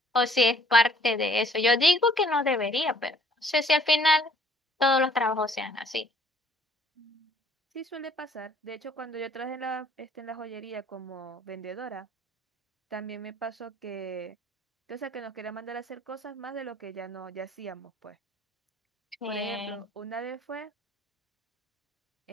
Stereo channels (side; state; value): both; normal; correlation 0.59